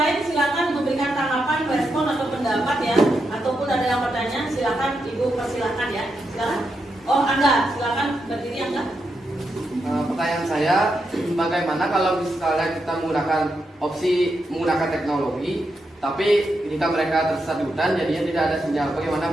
silakan memberikan tanggapan, respon atau pendapat ya, ataupun ada yang bertanya, silakan Ibu persilakan ya, silakan. Oh Angga, silakan berdiri Angga. Pertanyaan saya, bagaimana kalau misalnya kita menggunakan teknologi, tapi jika mereka tersesat di hutan, jadinya tidak ada sinyal.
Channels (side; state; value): both; normal; correlation 0.84